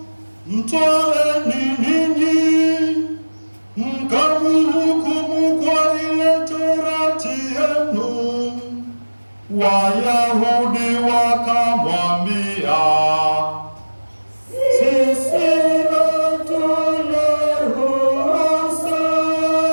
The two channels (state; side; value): inverted; both; correlation -1.00